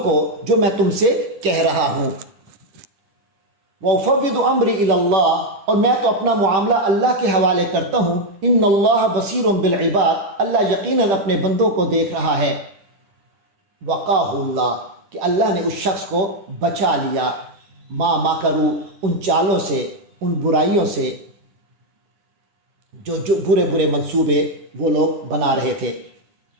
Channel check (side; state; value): left; late; 10 ms